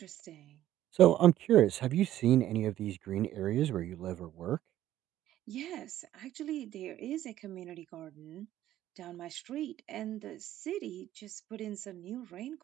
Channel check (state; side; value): quieter; left; 13.1 dB